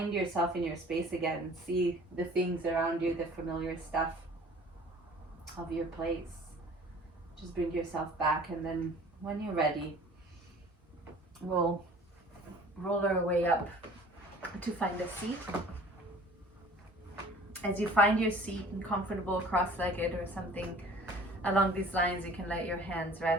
yourself in your space again. See the things around you, the familiar stuff of your place. Just bring yourself back, and then when you're ready, we'll roll our way up to find a seat. As you find your seat and comfortable cross-legged or something along these lines, you can let your hands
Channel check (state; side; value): normal; both; correlation 0.48